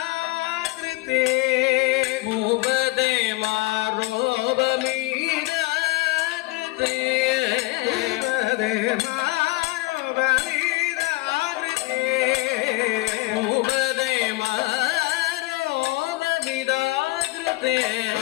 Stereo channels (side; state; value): right; quieter; 22.2 dB